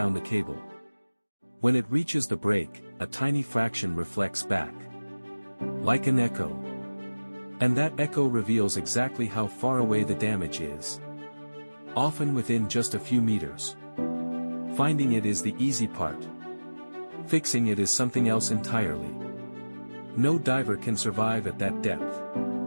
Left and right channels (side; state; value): both; inverted; correlation -1.00